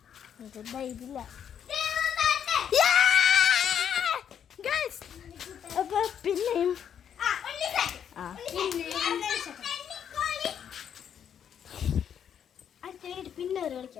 ഇതില്ല. അപ്പൊ പിന്നെയും പിന്നെ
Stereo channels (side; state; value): right; quieter; 8.6 dB